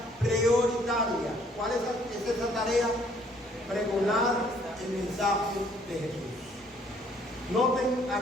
prioritaria. ¿Cuál es esa tarea? Pregonar el mensaje de Jesús. Noten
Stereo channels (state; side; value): normal; both; correlation 0.62